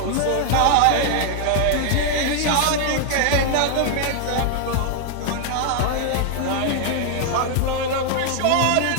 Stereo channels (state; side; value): different; both; correlation 0.00